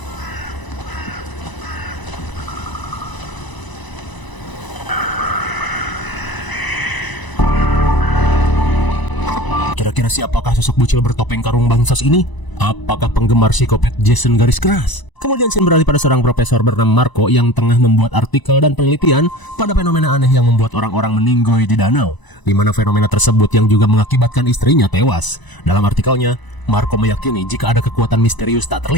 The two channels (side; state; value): right; late; 1.0 ms